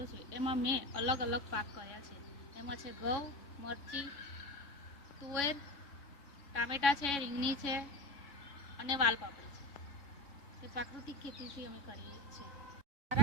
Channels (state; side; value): late; right; 3.6 ms